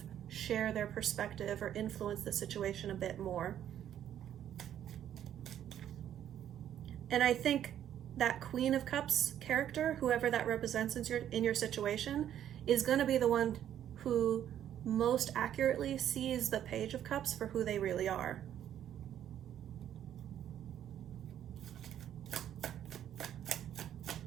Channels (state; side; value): quieter; left; 10.6 dB